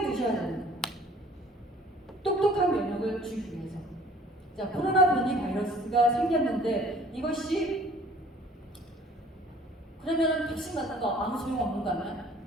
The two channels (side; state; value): both; normal; correlation 0.53